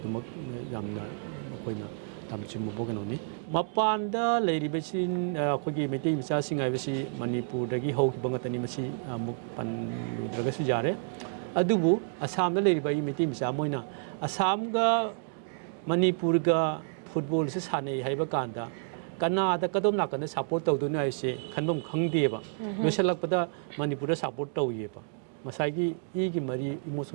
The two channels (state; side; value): silent; left; digital silence